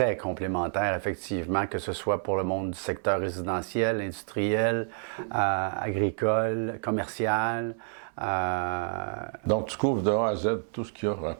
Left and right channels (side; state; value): left; silent; 59 dB below the other